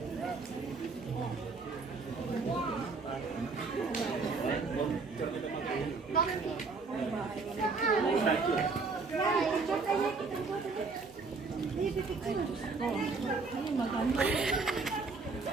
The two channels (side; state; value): left; quieter; 4.2 dB